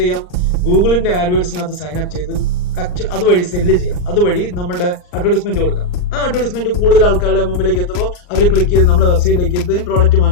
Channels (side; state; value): right; late; 39 ms